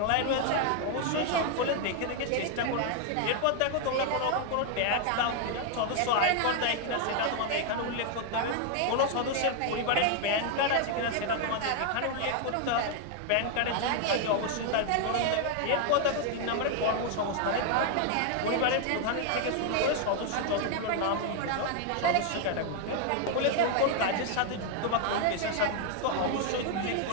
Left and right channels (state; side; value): different; both; correlation 0.00